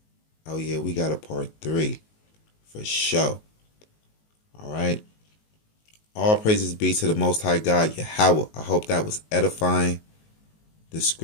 Oh, yeah, we got a part 3 for sure. All right. All praises be to the Most High God, Yahweh. I hope that was edifying. The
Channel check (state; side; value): late; right; 19 ms